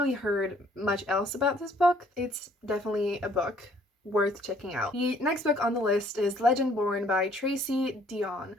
heard much else about this book. It's definitely a book worth checking out. The next book on the list is Legend Born by Tracy Dion.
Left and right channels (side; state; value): both; normal; correlation 0.61